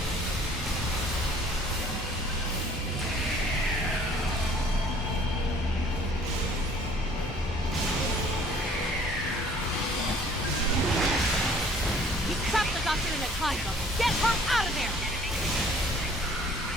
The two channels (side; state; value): both; normal; correlation 0.55